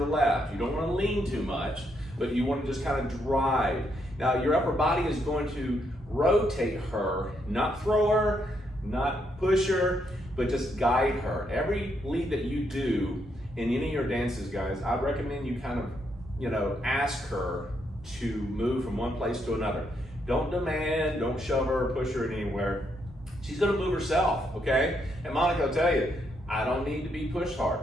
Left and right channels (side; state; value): both; normal; correlation 0.77